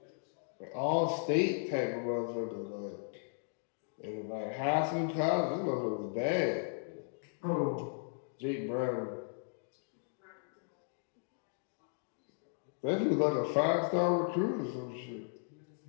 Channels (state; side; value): silent; right; digital silence